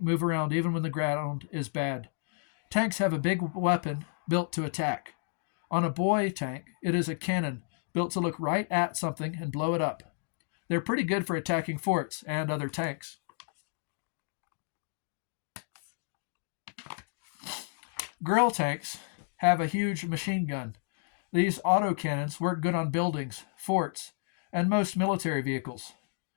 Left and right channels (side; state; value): right; silent; digital silence